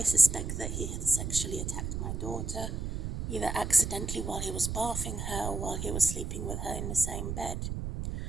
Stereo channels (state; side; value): noise; right; rumble, 4 dB below the sound